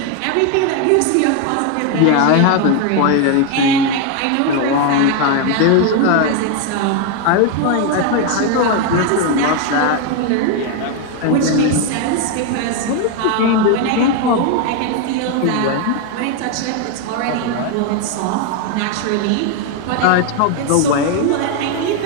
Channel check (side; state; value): both; different; correlation 0.01